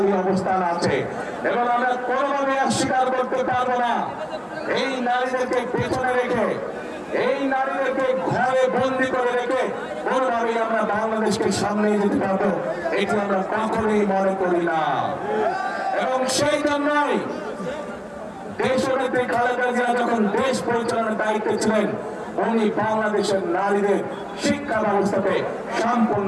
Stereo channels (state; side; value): identical; both; correlation 1.00